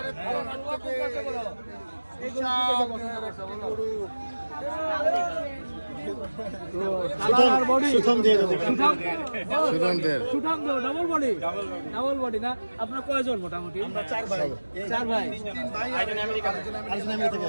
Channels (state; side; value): inverted; both; correlation -1.00